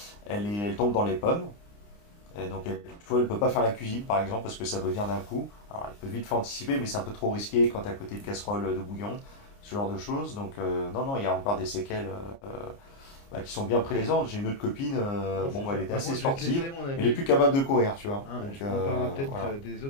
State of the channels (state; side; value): late; right; 29 ms